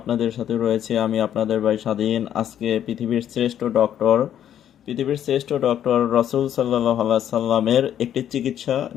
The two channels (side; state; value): right; quieter; 10.3 dB